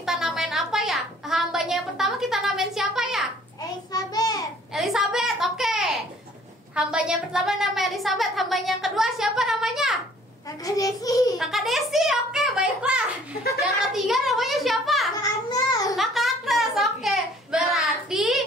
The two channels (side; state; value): both; normal; correlation 0.56